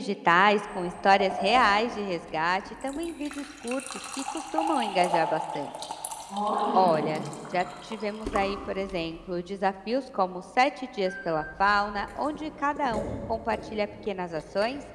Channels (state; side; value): identical; both; correlation 1.00